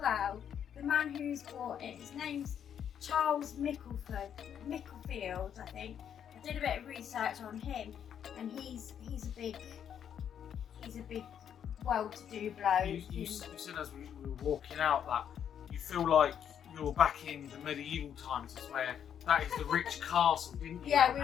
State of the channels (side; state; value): right; quieter; 8.8 dB